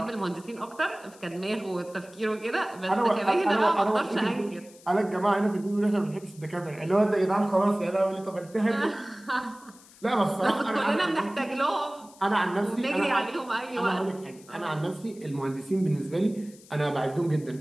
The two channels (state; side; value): noise; left; hiss, 24 dB below the sound